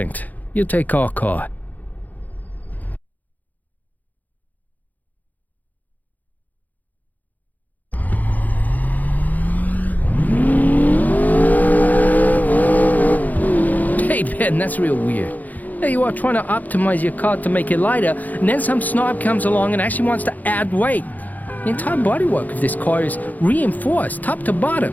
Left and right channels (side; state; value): right; late; 0.081 ms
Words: You take our car. Hey, Ben, that's real weird. There you are trying to optimize your car to make it lighter, and then some snob comes along and actually wants to add weight. The entire bodywork of this car is reinforced, top to bottom.